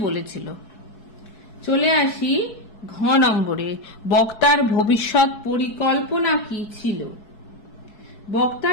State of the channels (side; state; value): right; late; 4.7 ms